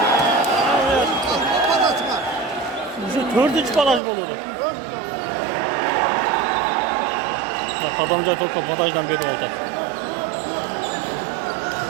Уже dördüncü baraj buludu. Adamca topa badajdan beri oldu.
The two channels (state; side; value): drops out; left; at 4.0 s